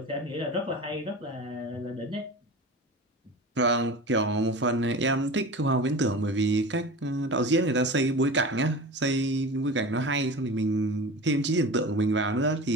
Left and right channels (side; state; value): both; normal; correlation 0.33